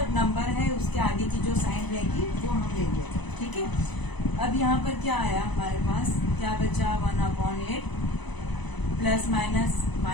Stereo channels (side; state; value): right; late; 1.0 ms